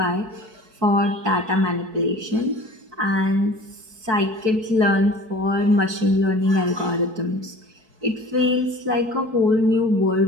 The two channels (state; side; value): late; left; 4.6 ms